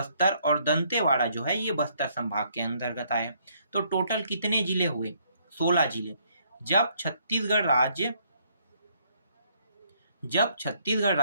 और दंतेवाड़ा जो है ये बस्तर संभाग के अंतर्गत आए। तो टोटल कितने जिले हुए? 16 जिले। जब छत्तीसगढ़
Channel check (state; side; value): inverted; both; correlation -0.68